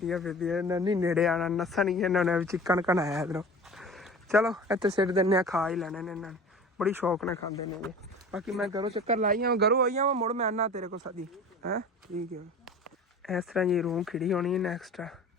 ਫਿਰਦੀਆਂ, ਇਹਨਾਂ ਨਹੀਂ ਨੇੜੇ ਆਉਣਾ, ਨੱਸਣਗੀਆਂ ਇਹਨਾਂ ਨੇ ਵੀ ਚਿੱਕਣ ਘਣਾਇਆ ਇੱਧਰੋਂ। ਚਲੋ ਇੱਥੇ ਸਿੱਟ ਦਿੰਦੇ ਆ, ਖਾ ਹੀ ਲੈਣੇ ਨੇ ਇਹਨਾਂ ਨੇ, ਬੜੀ ਸ਼ੌਕ ਨਾਲ ਖਾਂਦੇ ਨੇ ਇਹ। ਬਾਕੀ ਮੈਂ ਘਰੋਂ ਚੱਕਰ ਲਾਈ ਆਵਾਂ, ਘਰੋਂ ਆਈ ਆਵਾਂ ਮੁੜ ਮੈਂ ਆਨਾ ਤੇਰੇ ਕੋਲ ਸਦੀ ਹੈ। ਠੀਕ ਹੈ ਇਸ ਤਰ੍ਹਾਂ ਜੀ ਰੂਮ ਖਿੜੀ ਹੋਣੀ ਹੈ ਨੈਕਸਟ।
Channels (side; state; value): both; normal; correlation 0.39